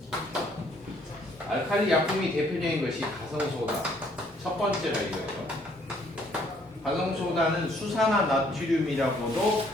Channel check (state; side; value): normal; both; correlation 0.64